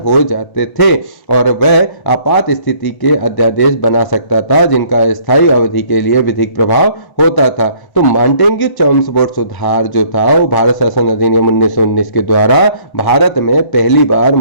हो जाते थे और वह आपात स्थिति के अध्यादेश बना सकता था जिनका स्थायी अवधि के लिए विधिक प्रभाव होता था। तो मांटेग्यू चेम्सफोर्ड सुधार जो था वो भारत शासन अधिनियम 1919 के द्वारा भारत में पहली बार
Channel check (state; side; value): late; right; 1.1 ms